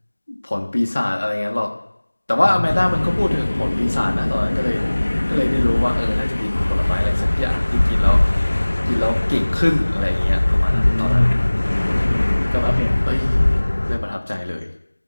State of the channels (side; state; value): both; inverted; correlation -1.00